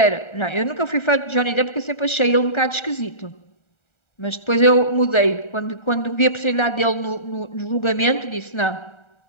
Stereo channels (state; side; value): late; right; 1.3 ms